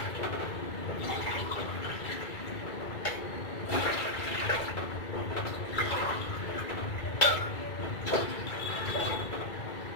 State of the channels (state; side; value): late; right; 2.3 ms